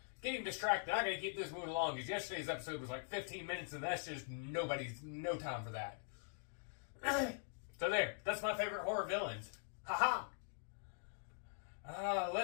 getting distracted. I gotta keep this moving along because yesterday's episode was like 15 minutes and that's just no time for that. So there, that's my favorite horror villains. Haha!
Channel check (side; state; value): right; silent; digital silence